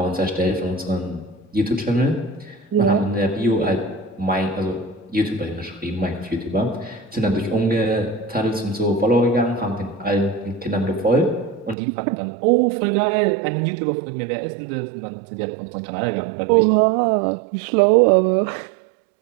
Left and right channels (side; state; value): left; drops out; at 11.8 s